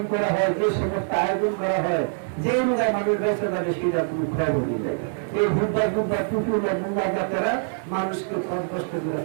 করা হয়, যে সমস্ত আয়োজন করা হয়, যে রোজায় মানুষ বেঁচে যাবে সেটা তুমি খবর দিলে। এই বুধবার পুকুর মুম্বা বাচ্চারা মানুষকে কষ্ট করে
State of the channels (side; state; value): left; silent; digital silence